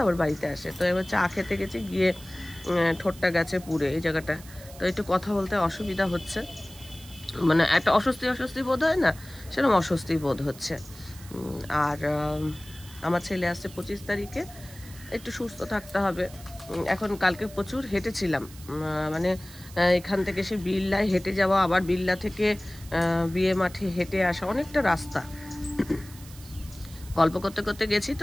বাড়িতে আসে। তো এবার চা খেতে গেছি, গিয়ে ঠোঁটটা গেছে পুড়ে এই জায়গাটা। তো একটু কথা বলতে অসুবিধা হচ্ছে, মানে একটা অস্বস্তি বোধ হয় না, সেরকম অস্বস্তি বোধ হচ্ছে। আর আমার ছেলে আসছে 25 তারিখে, একটু সুস্থ থাকতে হবে। এখন কালকে প্রচুর হেঁটেছিলাম, মানে এখান থেকে সে বিল্লায় হেঁটে যাওয়া, আবার বিল্লা থেকে বিয়ে মাঠে হেঁটে আসা, অনেকটা রাস্তা। গল্প করতে করতে গেছি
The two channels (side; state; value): right; noise; hiss, 19 dB below the sound